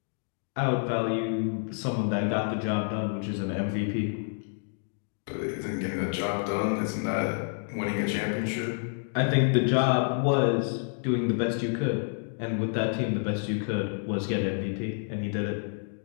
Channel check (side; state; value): right; silent; 59 dB below the other